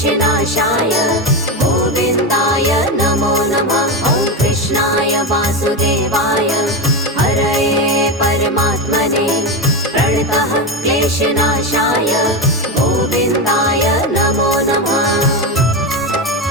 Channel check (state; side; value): normal; both; correlation 0.15